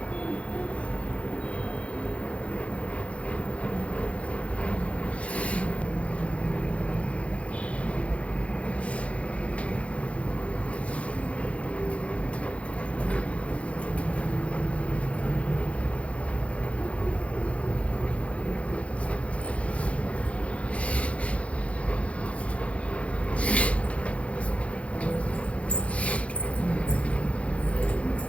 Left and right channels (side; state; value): right; late; 0.063 ms